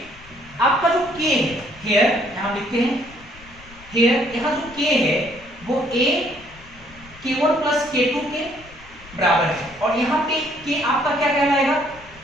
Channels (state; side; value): noise; left; rumble, 22 dB below the sound